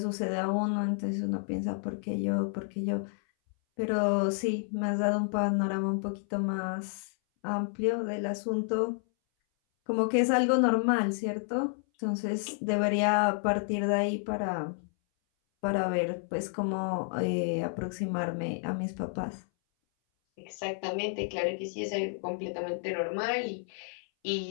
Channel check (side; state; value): right; silent; 57 dB below the other